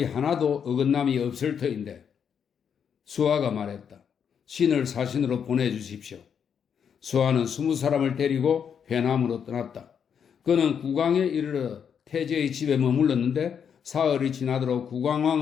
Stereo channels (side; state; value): right; quieter; 7.5 dB